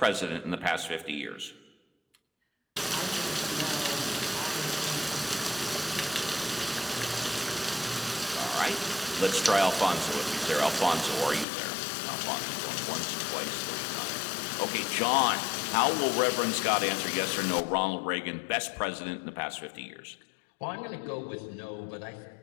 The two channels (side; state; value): right; drops out; at 11.5 s